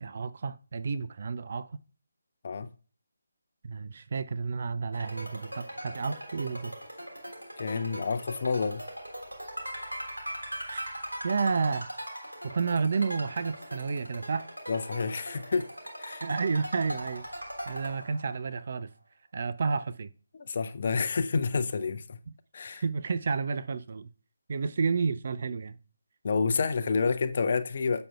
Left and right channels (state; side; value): inverted; both; correlation -0.85